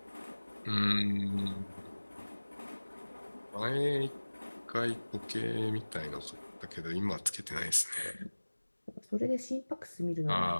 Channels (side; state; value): both; inverted; correlation -1.00